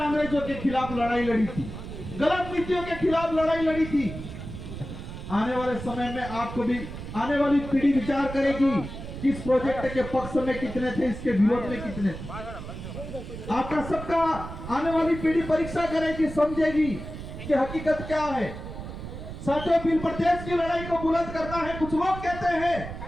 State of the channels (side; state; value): right; noise; rumble, 10 dB below the sound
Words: के खिलाफ लड़ाई लड़ी थी, गलत नीतियों के खिलाफ लड़ाई लड़ी थी। आने वाले समय में आपको भी, आने वाली पीढ़ी विचार करेगी कि इस प्रोजेक्ट के पक्ष में कितने थे, इसके विरोध में कितने थे। आपका सबका आने वाली पीढ़ी परीक्षा करेगी, समझेगी कि हकीकत क्या है। साथियों, बिल प्रदेश की लड़ाई को बुलंद करना है। कुछ लोग कहते हैं